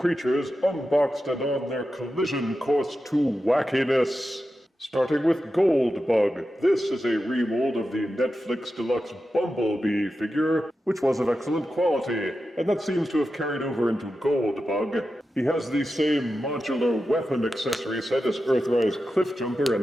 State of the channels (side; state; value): both; normal; correlation 0.91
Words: unboxed and on their collision course to wackiness. Starting with Goldbug. This is a remold of the Netflix Deluxe Bumblebee figure, which was of excellent quality, and that seems to have carried over into Goldbug. He has the same modular weapon accessory set as Earthrise Cliffjumper